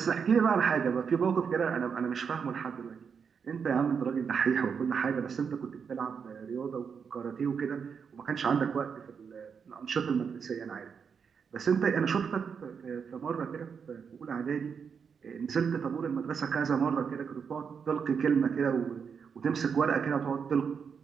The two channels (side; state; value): left; quieter; 6.4 dB